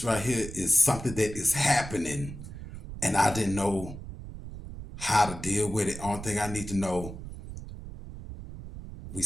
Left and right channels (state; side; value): noise; right; rumble, 11 dB below the sound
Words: right here is something that is happening, and I didn't know how to deal with it. Only thing I need to know, we